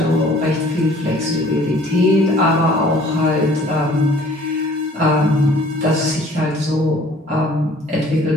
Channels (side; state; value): both; normal; correlation 0.53